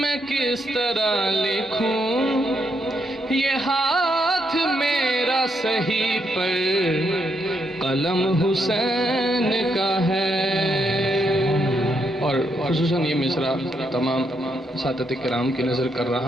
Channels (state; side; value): normal; both; correlation 0.78